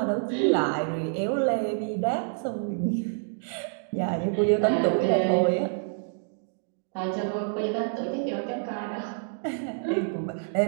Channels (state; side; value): silent; left; digital silence